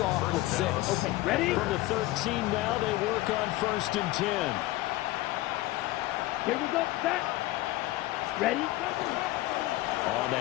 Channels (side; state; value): right; quieter; 17.8 dB